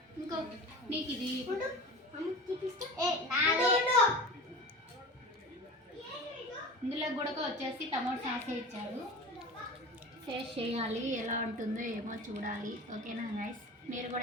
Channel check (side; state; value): both; normal; correlation 0.34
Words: ఇంకొకటి నీకు ఇది ఇందులో కూడా వచ్చేసి టమాటో సాస్ ఇచ్చాడు. టేస్ట్ చేయాలి, ఎలా ఉంటుందో ఏమో చూడాలి. ఓకేనా గైస్, మీరు